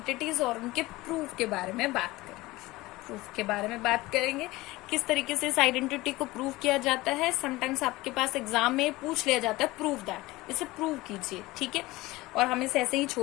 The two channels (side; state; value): right; quieter; 19.8 dB